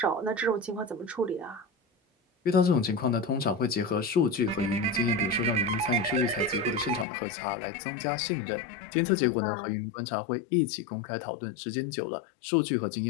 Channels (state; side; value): drops out; right; at 7.1 s